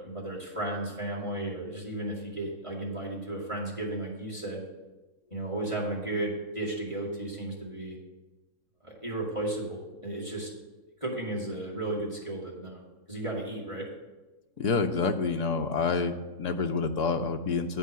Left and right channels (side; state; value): left; late; 3.6 ms